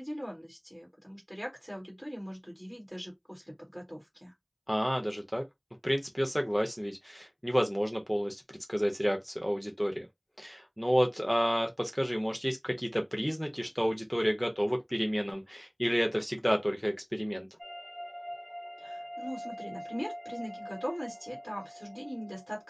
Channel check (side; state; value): both; identical; correlation 1.00